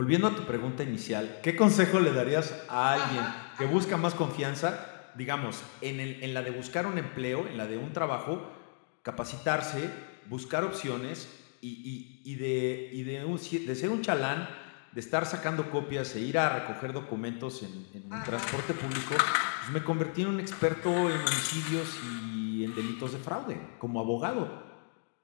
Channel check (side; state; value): right; silent; digital silence